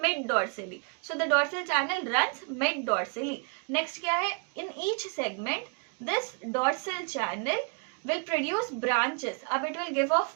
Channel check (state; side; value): quieter; left; 35.2 dB